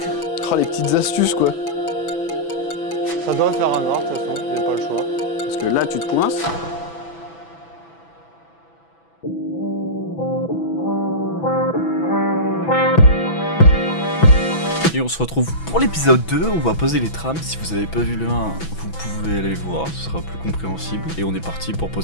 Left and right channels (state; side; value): late; right; 6.0 ms